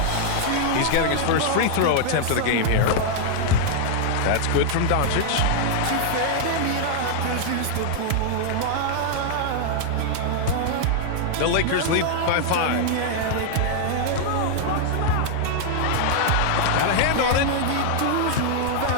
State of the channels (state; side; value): different; both; correlation 0.00